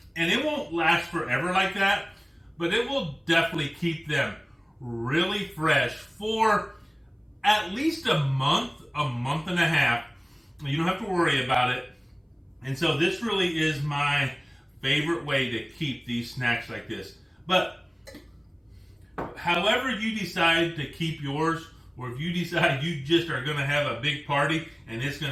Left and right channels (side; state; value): both; identical; correlation 1.00